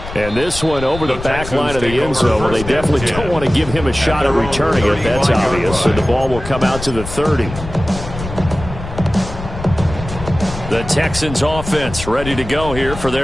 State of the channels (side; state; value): left; noise; rumble, 10 dB below the sound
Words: And this one over the back line of the end zone. Well, they definitely don't want to give him a shot at returning it. That's obvious. So the ball will come out to the 30. The Texans offense ready to go here for